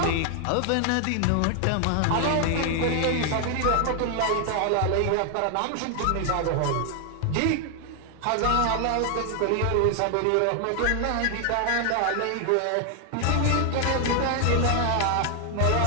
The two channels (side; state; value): both; different; correlation 0.00